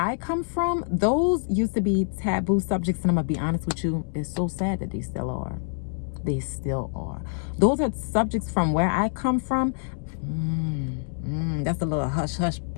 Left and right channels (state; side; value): silent; right; 61 dB below the other